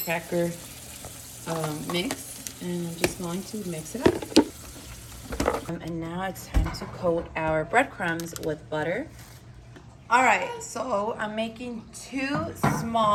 cracker mix, and I'm just going to mix it up. And now it's time to coat our breadcrumbs with butter. All right, so I'm making 2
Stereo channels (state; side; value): identical; both; correlation 1.00